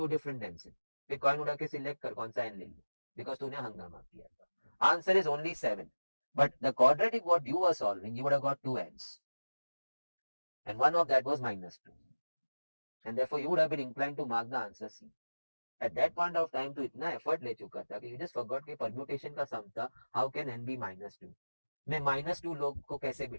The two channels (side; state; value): both; inverted; correlation -1.00